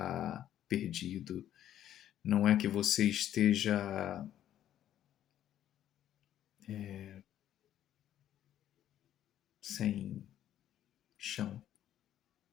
perdido, não é que você esteja sem chão.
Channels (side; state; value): right; quieter; 11.5 dB